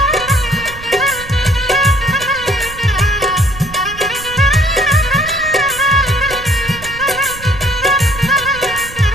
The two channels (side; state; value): right; noise; rumble, 15 dB below the sound